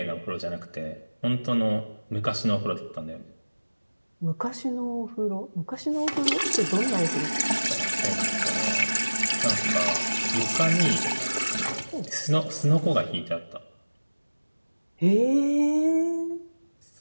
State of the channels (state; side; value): inverted; both; correlation -1.00